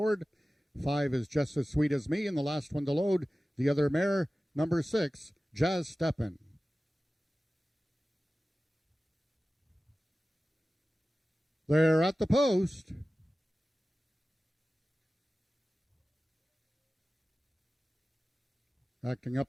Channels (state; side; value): normal; both; correlation 0.96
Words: 5 is Just as Sweet as Me, and the last one to load, the other mare, number 6, Jazz Steppin'. They're at the post. Acting